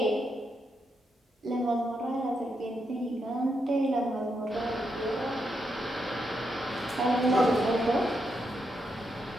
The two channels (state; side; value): normal; both; correlation 0.82